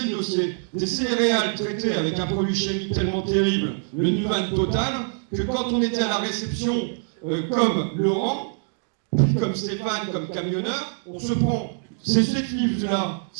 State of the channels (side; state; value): left; silent; 62 dB below the other